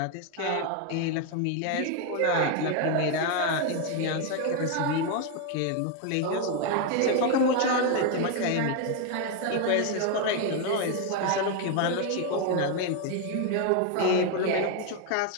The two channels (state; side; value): different; both; correlation 0.01